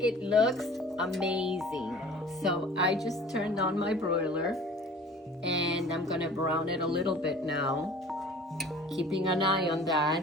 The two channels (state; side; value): normal; both; correlation 0.46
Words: It looks amazing. So I just turned on my broiler and I'm gonna brown it a little bit now. Keeping an eye on